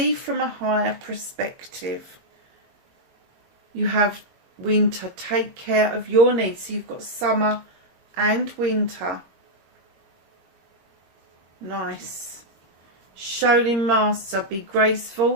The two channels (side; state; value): left; late; 21 ms